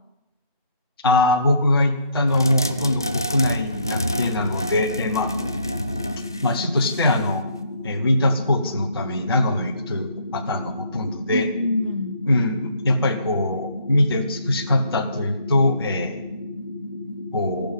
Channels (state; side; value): inverted; both; correlation -0.65